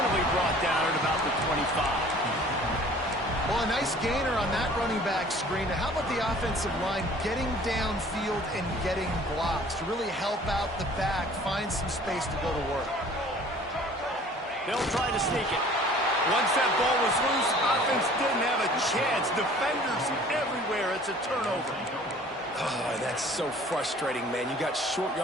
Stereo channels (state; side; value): normal; both; correlation 0.50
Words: brought down at about the 25. Well, a nice gainer on that running back screen. Now, how about the offensive line getting downfield and getting blocks to really help out the back, find some space to go to work? They'll try to sneak it. Once that ball was loose, offense didn't have a chance. Defenders everywhere. It's a turnover. Oh, that's so frustrating, man. You got short